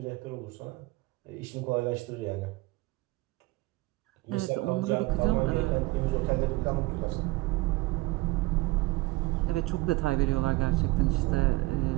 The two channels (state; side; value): quieter; left; 21.4 dB